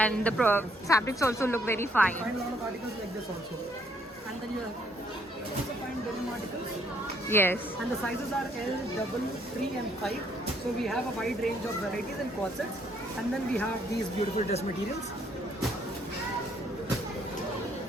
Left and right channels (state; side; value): normal; both; correlation 0.68